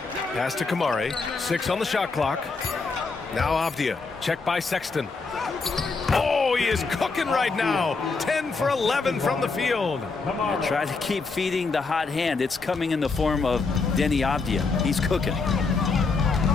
Pass to Kamari. 6 on the shot clock. Now Avdia. Checked by Sexton. Oh, he is cooking right now. 10 for 11 from the field. Try to keep feeding the hot hand. It's coming in the form of Denny Avdia. He's cooking.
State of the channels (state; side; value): quieter; right; 4.3 dB